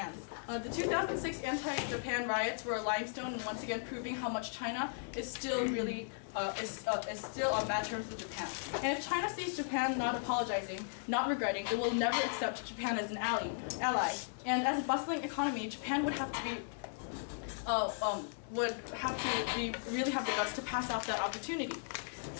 The 2006 anti-Japan riots were a limestone, and once again proving how much China is still really is still on bad terms with Japan. And if China sees Japan not apologizing, not regretting, it will never accept Japan as an ally. And as a bustling economy, Japan would have to really have the guts to pass out that opportunity.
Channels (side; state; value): right; silent; 53 dB below the other